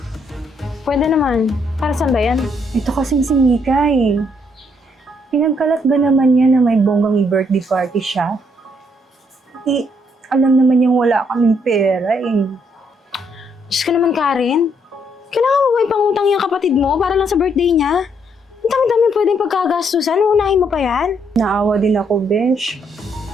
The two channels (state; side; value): normal; both; correlation 0.72